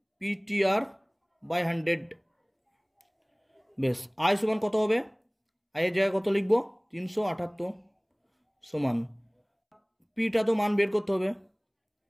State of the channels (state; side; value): identical; both; correlation 1.00